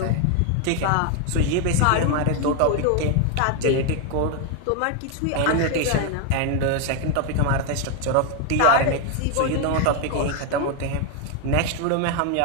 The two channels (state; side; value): different; both; correlation 0.01